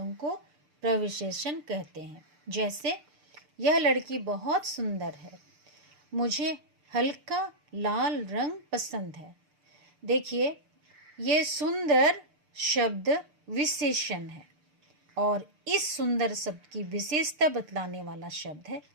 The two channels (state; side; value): late; left; 6.7 ms